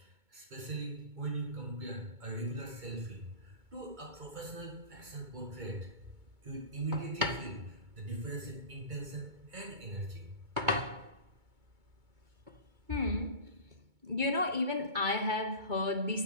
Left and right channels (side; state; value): left; late; 2.2 ms